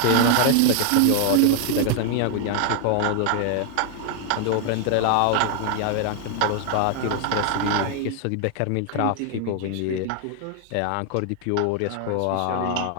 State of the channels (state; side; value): different; both; correlation 0.00